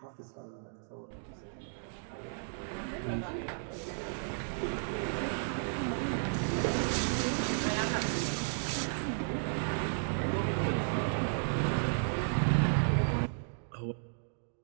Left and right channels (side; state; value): left; silent; digital silence